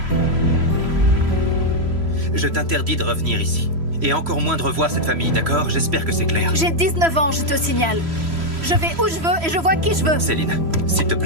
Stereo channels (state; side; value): late; left; 3.0 ms